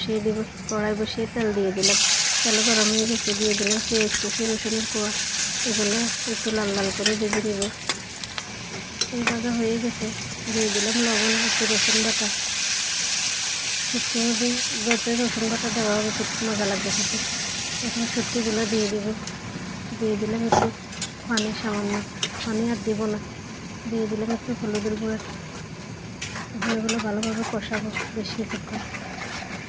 দেব। কড়াই বসিয়ে তেল দিয়ে দিলাম। তেল গরম হয়ে গেছে, দিয়ে দিলাম পেঁয়াজ কুচি, রসুনের কোয়া। এগুলো একটু লাল লাল করে ভেজে দেবো। ভাজা হয়ে গেছে, দিয়ে দিলাম লবণ, একটু রসুন বাটা। শুটকির মধ্যে যত রসুন বাটা দেওয়া হবে খুব মজা লাগবে খেতে। এখন শুটকিগুলো দিয়ে দেবো। দিয়ে দিলাম একটু পানি, সামান্য পানি আর দেবো না। দিয়ে দিলাম একটু হলুদের গুঁড়া। এগুলো ভালোভাবে কষাবো বেশ কিছুক্ষণ।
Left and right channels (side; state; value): both; identical; correlation 1.00